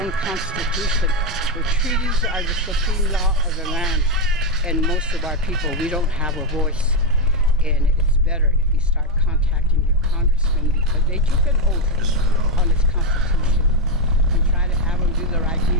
own constitution. The treaties are the supreme law of the land, and most of our people, we don't have a voice. And it's better if you start contacting your congressman because they took an oath on this constitution and try to have them do the right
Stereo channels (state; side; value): normal; both; correlation 0.05